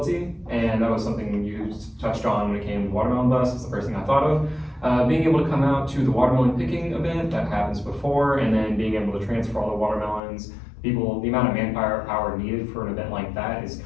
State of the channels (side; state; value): right; drops out; at 10.2 s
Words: and that was something you touched on when it came to Watermelon Bus. It's the first thing I thought of. Being able to come out to the watermelon picking event that happens before, and then being able to transfer all the watermelons. The amount of manpower needed for an event like that is